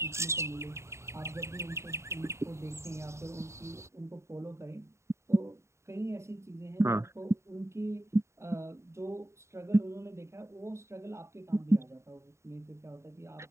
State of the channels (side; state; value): left; late; 0.14 ms